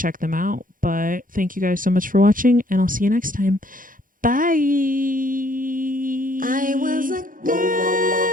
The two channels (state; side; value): late; left; 0.40 ms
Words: them out. But thank you guys so much for watching, and I'll see you next time. Bye. I was a